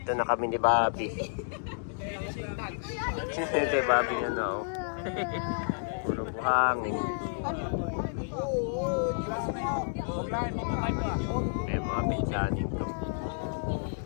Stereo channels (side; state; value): right; silent; digital silence